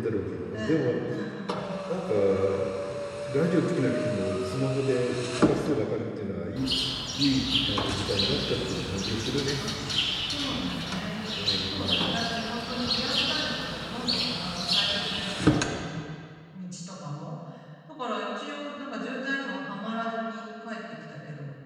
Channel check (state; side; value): identical; both; correlation 1.00